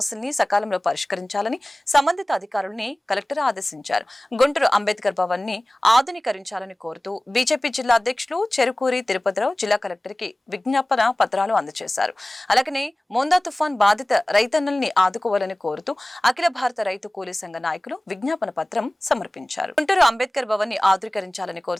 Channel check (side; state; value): both; normal; correlation 0.98